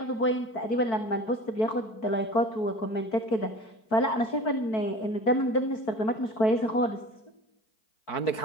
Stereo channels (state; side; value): late; right; 4.5 ms